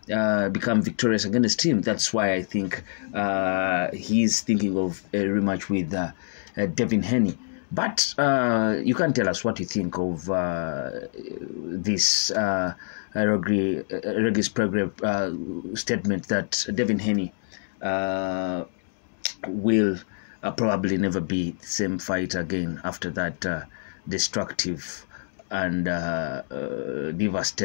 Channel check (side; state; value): right; silent; digital silence